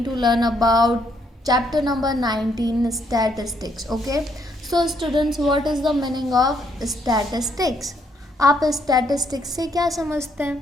to learn about chapter number 19 statistics. Okay, so students, what is the meaning of statistics? आप statistics से क्या समझते हैं?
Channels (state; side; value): normal; both; correlation 0.72